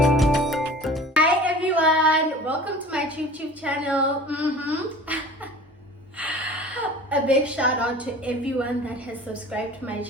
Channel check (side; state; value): both; normal; correlation 0.42